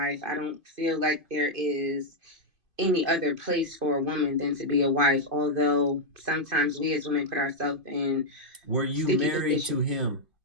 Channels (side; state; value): left; late; 2.5 ms